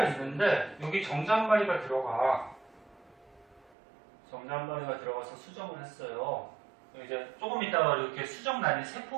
있는데 여기 정자한마리가 들어가. 정자한마리가 들어가서 수정을 했어요. 이제 조금 있다가 이렇게 수정란이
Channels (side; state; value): left; drops out; at 3.7 s